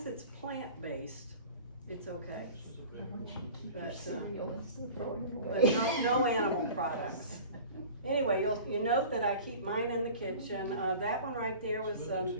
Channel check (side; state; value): both; inverted; correlation -0.41